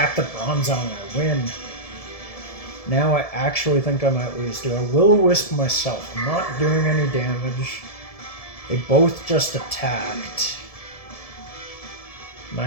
the Bronzong, I win. Now I actually think I might lose. Do I Will-O-Wisp myself? I'm not doing any damage. They both just attacked. I'm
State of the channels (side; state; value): right; late; 1.7 ms